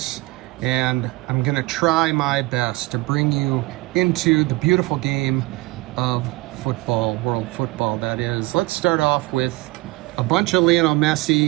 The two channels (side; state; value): left; quieter; 21.9 dB